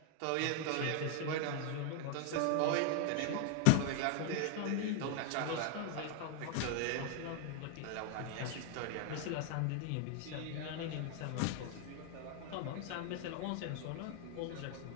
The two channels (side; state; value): both; different; correlation 0.00